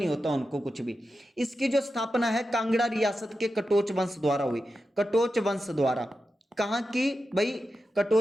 होता उनको कुछ भी, इसकी जो स्थापना है कांगड़ा रियासत के कटोच वंश द्वारा हुई। कटोच वंश द्वारा, कहां की भाई?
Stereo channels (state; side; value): normal; both; correlation 0.90